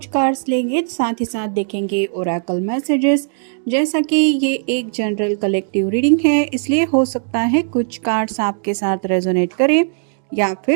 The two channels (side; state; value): left; silent; digital silence